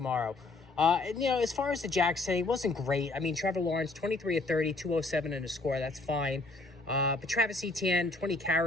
As far as the Jags say, it wasn't great. I mean, Trevor Lawrence, 23 of 30, 207 in a score. That's fine. But Travis Etienne, 20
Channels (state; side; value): quieter; right; 3.2 dB